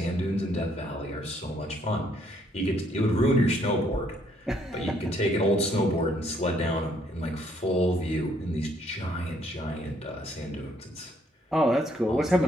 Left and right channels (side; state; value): both; normal; correlation 0.68